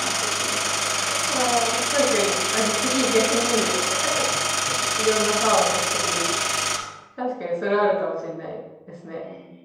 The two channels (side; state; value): both; identical; correlation 1.00